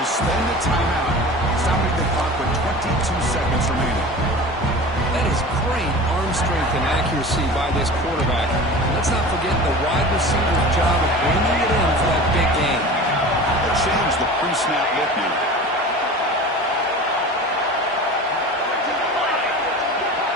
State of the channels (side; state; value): both; normal; correlation 0.36